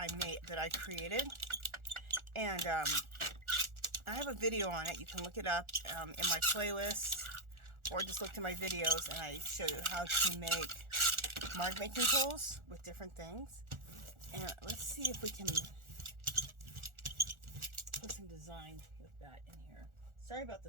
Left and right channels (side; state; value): left; late; 1.4 ms